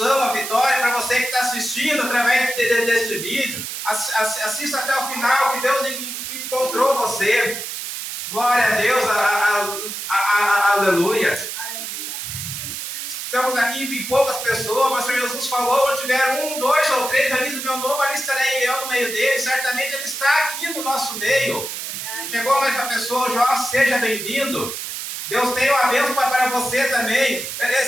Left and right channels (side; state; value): right; noise; hiss, 6 dB below the sound